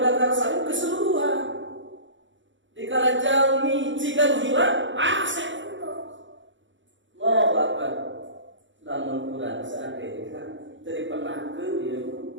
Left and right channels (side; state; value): left; late; 0.55 ms